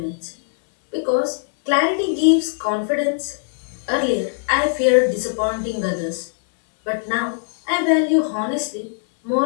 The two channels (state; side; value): silent; right; digital silence